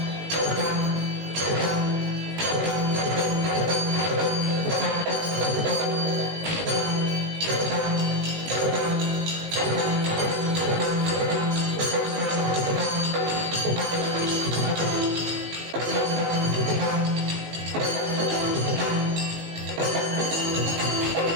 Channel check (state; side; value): late; left; 19 ms